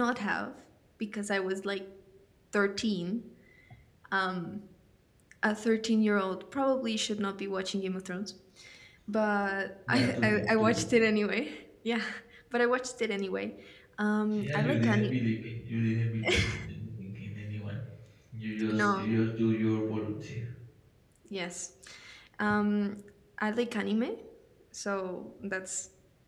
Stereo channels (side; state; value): both; identical; correlation 1.00